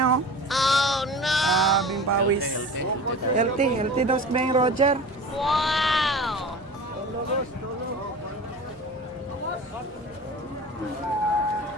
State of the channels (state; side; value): normal; both; correlation 0.35